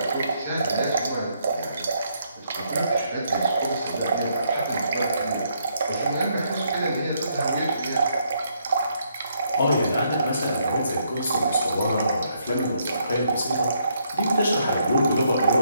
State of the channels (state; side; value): inverted; both; correlation -0.73